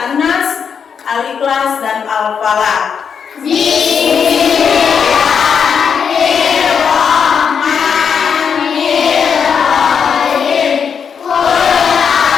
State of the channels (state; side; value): quieter; right; 6.8 dB